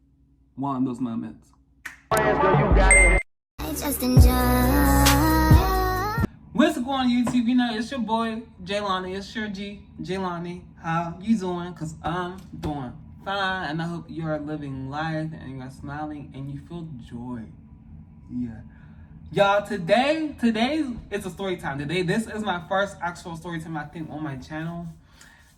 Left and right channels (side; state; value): both; identical; correlation 1.00